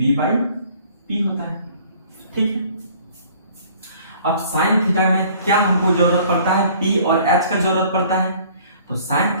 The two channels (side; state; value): both; inverted; correlation -0.54